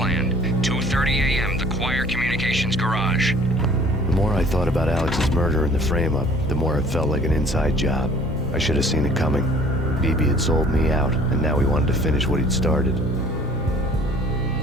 2:30 a.m., the Choir Communications Garage. The more I thought about Alex's murder and the frame-up, the more it felt like an inside job. I should have seen it coming. BB had sold me out, and now he wanted to finish what he'd started.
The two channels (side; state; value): both; normal; correlation 0.52